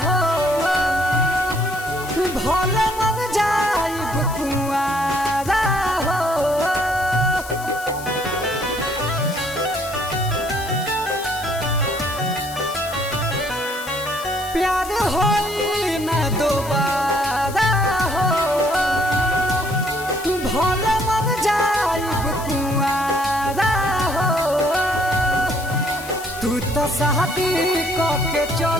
हो, भले मर जाइब कुआरा हो। प्यार होई ना दोबारा हो, भले मर जाइब कुआरा हो। तू तो शादी करके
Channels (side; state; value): left; noise; hiss, 14 dB below the sound